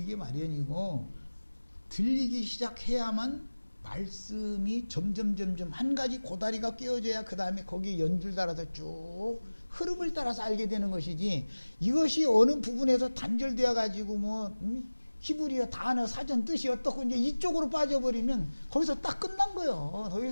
마련이고, 들리기 시작해야만 말씀이 점점 한 가지 고다리가 끼워져야 그 다음에 거기에 연줄 따라서 쭉 흐름을 따라서 알게 되는 것이지, 이것이 어느 부분에서 단절되어 가지고 뭐 히브리어 단어 사전 뜻이 어떻고 이제 이쪽으로 빠져버리면 거기서 딱 끝난 거예요. 더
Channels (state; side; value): inverted; both; correlation -1.00